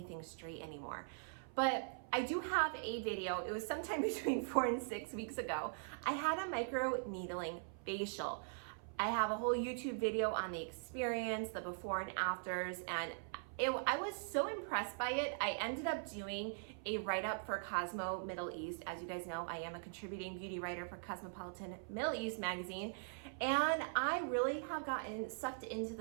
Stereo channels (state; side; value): silent; left; 50 dB below the other